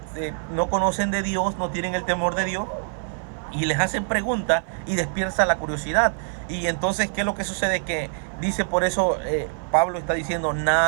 no conocen de Dios, no tienen el temor de Dios y les hacen preguntas y despierta la curiosidad. Y entonces, ¿qué es lo que sucede? Que dice, por eso Pablo está diciendo,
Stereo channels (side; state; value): left; silent; 57 dB below the other